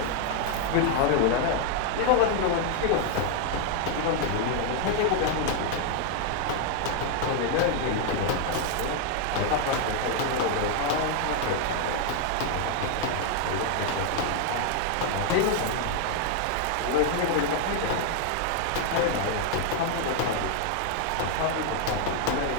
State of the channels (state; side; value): different; both; correlation 0.00